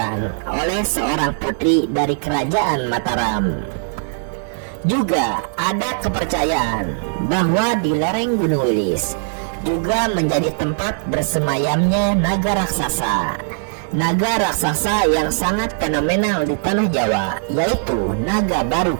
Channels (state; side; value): silent; left; digital silence